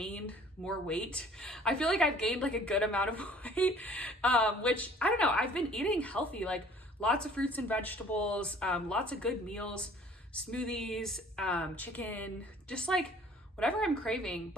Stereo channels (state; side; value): normal; both; correlation 0.53